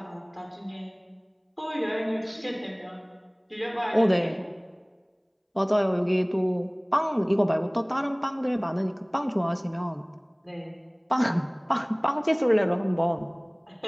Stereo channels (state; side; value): identical; both; correlation 1.00